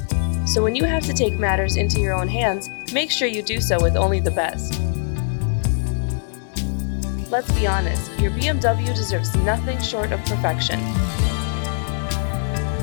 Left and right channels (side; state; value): right; silent; 65 dB below the other